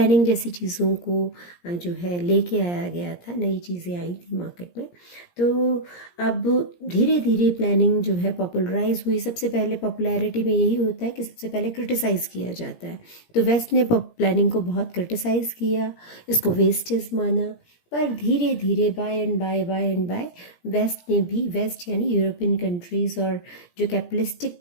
जैसी चीज़ों को जो है लेके आया गया था। नई चीज़ें आई थी मार्केट में। तो अब धीरे धीरे प्लानिंग जो है पॉपुलराइज हुई। सबसे पहले पॉपुलैरिटी में यही होता है कि सबसे पहले क्रिटिसाइज़ किया जाता है। तो वेस्ट ने प्लानिंग को बहुत क्रिटिसाइज़ किया, इसको वेस्टेज माना। पर धीरे धीरे बाय एंड बाय वेस्ट ने भी, वेस्ट यानी यूरोपियन कंट्रीज़ और जो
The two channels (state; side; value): late; right; 17 ms